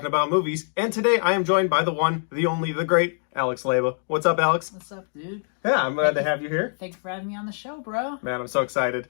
about movies, and today I am joined by the one, the only, the great Alex Leyba. What's up, Alex? What's up, dude? Yeah, I'm glad to have you here. Thanks for having me on the show, bro. Man, I'm so excited.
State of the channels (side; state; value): right; silent; 62 dB below the other